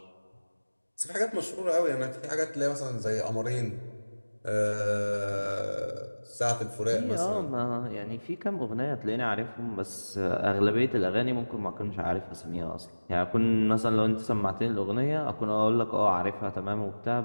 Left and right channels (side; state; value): both; inverted; correlation -1.00